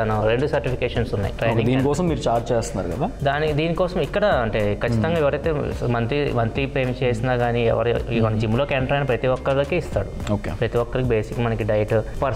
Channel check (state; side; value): identical; both; correlation 1.00